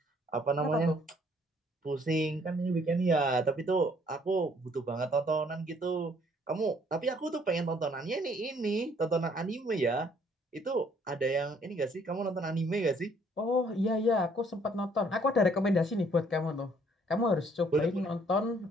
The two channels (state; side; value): normal; both; correlation 0.63